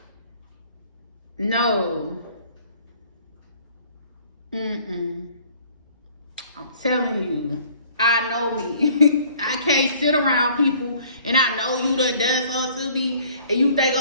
no. I'm telling you, I know me. I can't sit around people and I know you done something to me and you think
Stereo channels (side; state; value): both; inverted; correlation -0.55